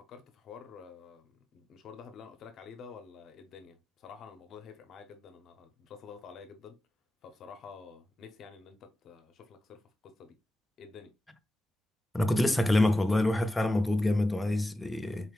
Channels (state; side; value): normal; both; correlation 0.93